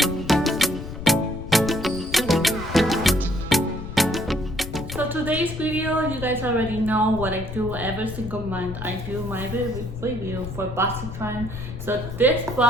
So today's video, you guys already know what I do every single month. I do my review for BoxyCharm. So this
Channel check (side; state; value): left; noise; rumble, 10 dB below the sound